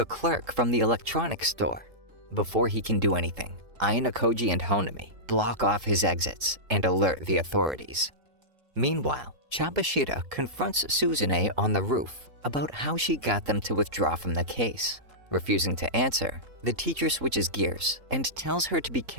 clerk from the electronics store. Before he can do anything, Ayanokouji and Honami block off his exits and alert the authorities. Meanwhile, Chabashira confronts Suzune on the roof about how she got them to withdraw from the case. Refusing to answer, the teacher switches gears and tells her to be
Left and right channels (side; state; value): left; late; 3.7 ms